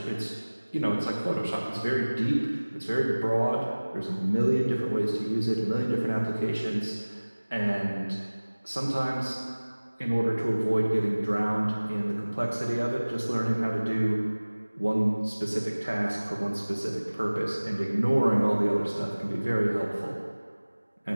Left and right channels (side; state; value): both; inverted; correlation -1.00